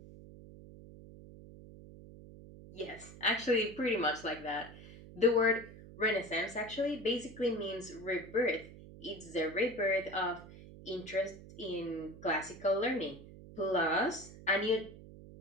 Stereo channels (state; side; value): noise; right; hum, 17 dB below the sound